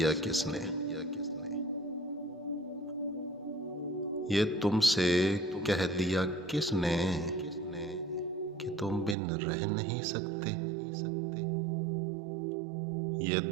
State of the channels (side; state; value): left; drops out; at 9.2 s